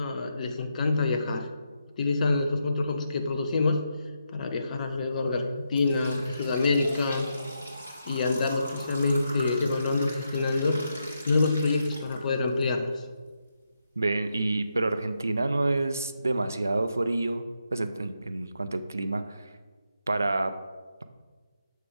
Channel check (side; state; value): both; inverted; correlation -0.82